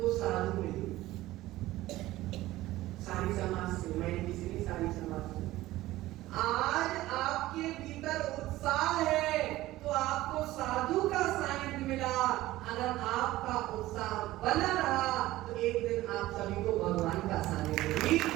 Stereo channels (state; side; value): quieter; left; 16.7 dB